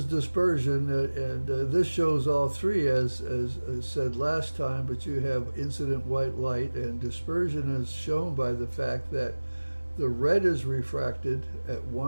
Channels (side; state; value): both; inverted; correlation -1.00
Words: dispersion, and this shows all 3 as said last time, but you have incident white light, and dispersion is shown by the fact that the red is refracted at